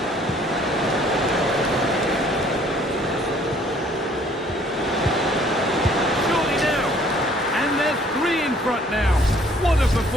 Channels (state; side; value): normal; both; correlation 0.59